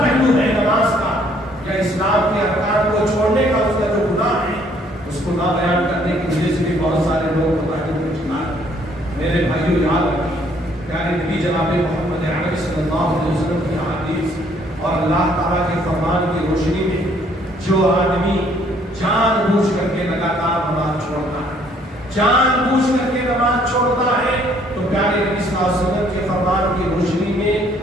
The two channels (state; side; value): normal; both; correlation 0.63